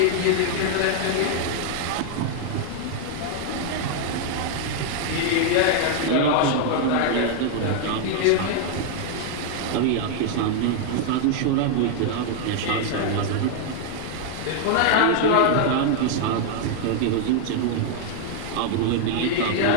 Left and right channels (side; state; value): both; different; correlation 0.00